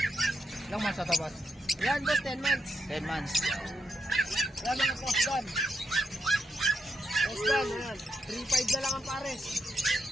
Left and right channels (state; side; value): normal; both; correlation 0.82